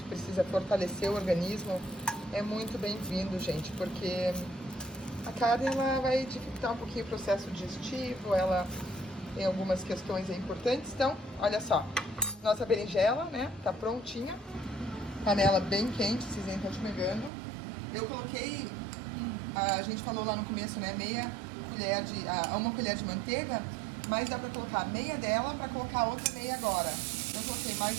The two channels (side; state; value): left; drops out; at 17.3 s